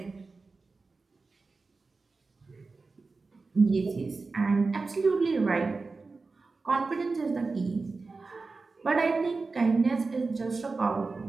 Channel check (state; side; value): quieter; left; 4.0 dB